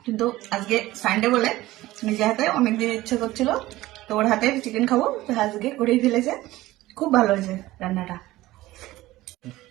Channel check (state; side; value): quieter; left; 17.3 dB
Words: কিন্তু আজকে সানডে বলে নিজে হাতে অনেকদিন ইচ্ছে করছিল, তো ওর হাতে চিকেন খাবো, তো আজকে করেই ফেলেছে। খুব ভালো হয়েছে রান্নাটা।